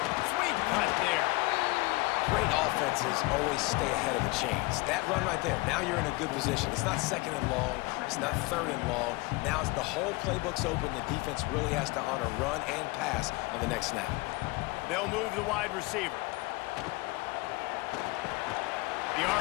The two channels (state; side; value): quieter; right; 23.5 dB